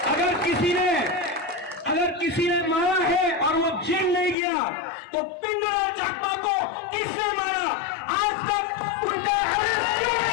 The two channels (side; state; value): right; drops out; at 4.4 s